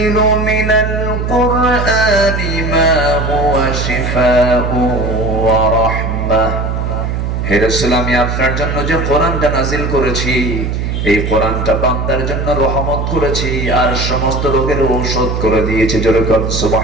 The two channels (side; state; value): right; noise; hum, 2 dB below the sound